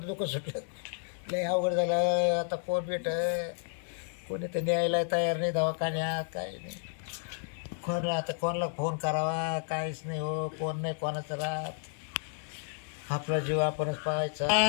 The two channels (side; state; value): right; silent; digital silence